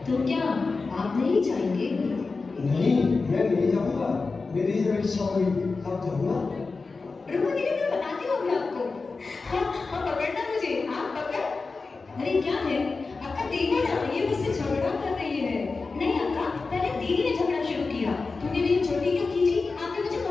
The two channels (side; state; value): right; quieter; 4.1 dB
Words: तो क्या आप नहीं जाएंगे? नहीं, मैं नहीं जाऊंगा। मेरी जब इच्छा हुई तब जाऊंगा। रुको दीदी, मैं बताती हूँ अभी आपको। हाँ, पकड़ना मुझे, आप पकड़। अरे क्या है? अक्का देखो ना, ये मुझसे झगड़ा कर रही है। नहीं अक्का, पहले दीदी ने झगड़ा शुरू किया। तूने मेरी छोटी क्यों खींची? आपने मुझे